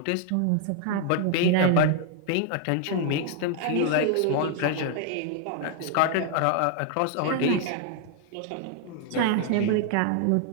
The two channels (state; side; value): different; both; correlation 0.00